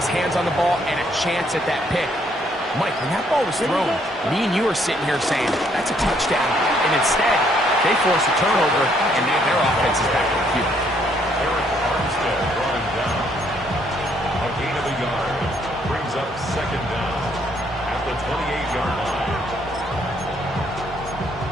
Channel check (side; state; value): both; normal; correlation 0.68